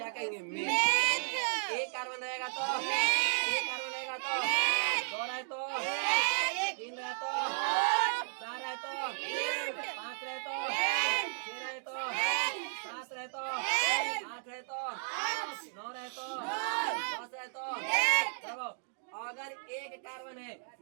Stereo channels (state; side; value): silent; left; digital silence